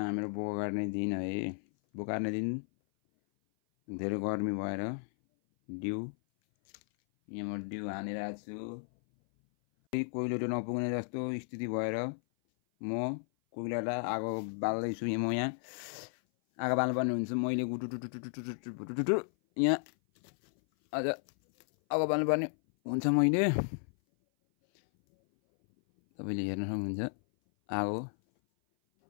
बोका काट्ने दिन है। बोका काट्ने दिन धेरै गर्मी भएर डिउ यहाँ म डिउ हानिरहेको छु। कोइलो नपुग्ने जस्तो स्थिति भएर म कोइलालाई आगो बाल्दैछु। म यहाँ आगो बाल्नुपर्ने हुन्छ। मैले गुटुटुटुटुटुटुटुटुटु यहाँ आज आगो बाल्नुपर्ने हुन्छ। मैले तपाईँले हेर्न सक्नुहुन्छ आगो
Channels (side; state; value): right; silent; 55 dB below the other